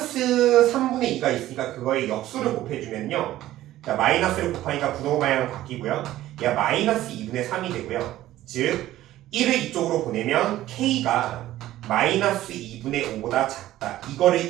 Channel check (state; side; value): quieter; left; 14.6 dB